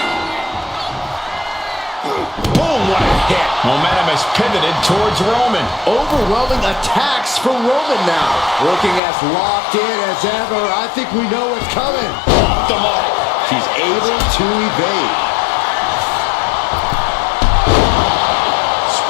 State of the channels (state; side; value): drops out; right; at 9.0 s